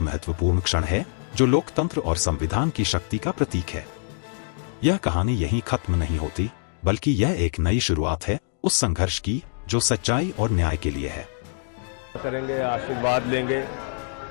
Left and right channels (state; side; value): silent; right; 62 dB below the other